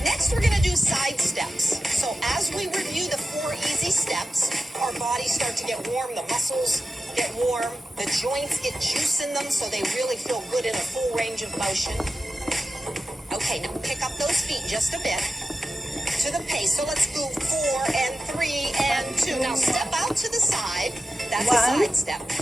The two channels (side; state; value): both; normal; correlation 0.92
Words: Next, we're going to do side steps. So as we review the 4 easy steps, our bodies start to get warm, the muscles get warm, the joints get juice in them so they really feel good in a full range of motion. Okay, now pick up those feet just a bit to the pace. So let's go 4 and 3 and 2. Now step out to the side. That's a side step.